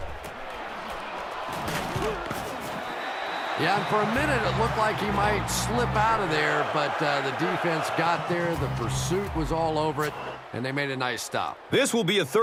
Yeah, and for a minute it looked like he might slip out of there, but the defense got there, the pursuit was all over it, and they made a nice stop. This will be a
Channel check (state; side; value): identical; both; correlation 1.00